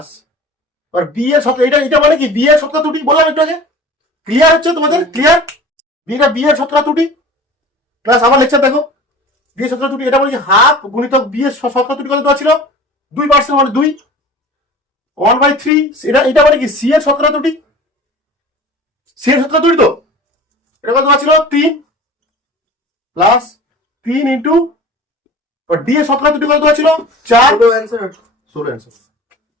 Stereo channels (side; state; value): both; normal; correlation 0.41